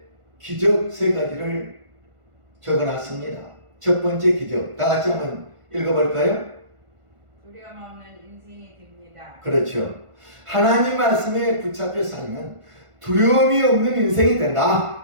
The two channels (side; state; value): left; late; 1.5 ms